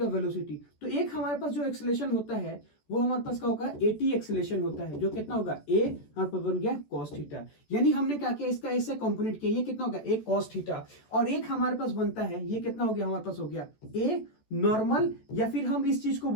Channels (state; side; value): late; right; 14 ms